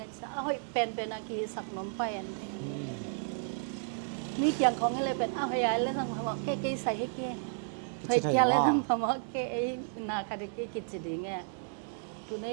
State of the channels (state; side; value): silent; left; 56 dB below the other